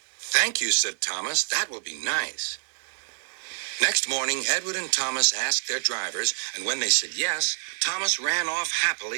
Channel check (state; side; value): silent; left; digital silence